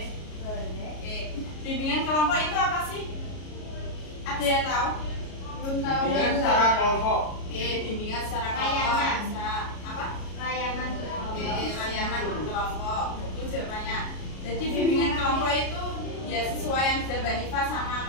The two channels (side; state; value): right; late; 33 ms